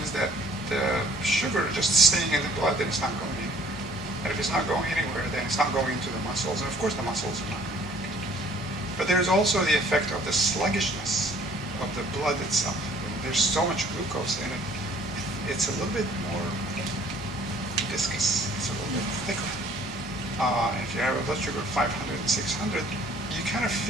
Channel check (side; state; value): both; normal; correlation 0.56